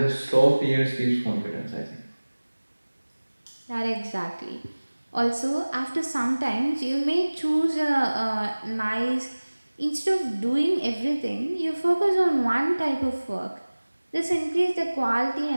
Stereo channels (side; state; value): both; inverted; correlation -1.00